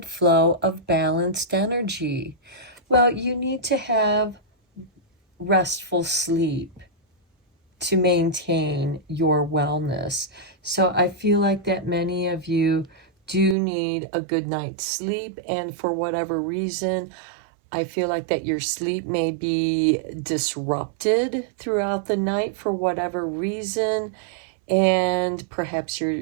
flow of balanced energy. Well, you need to have restful sleep to maintain your wellness. So I feel like that many of you do need a good night's sleep, and for whatever reason, I feel like that your sleep may be disrupted throughout the night for whatever reason, and perhaps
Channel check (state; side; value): drops out; left; at 13.6 s